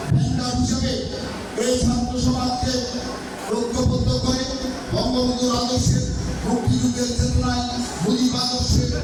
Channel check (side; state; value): both; identical; correlation 1.00